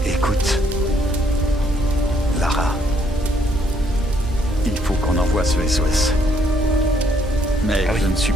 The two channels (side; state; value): both; normal; correlation 0.70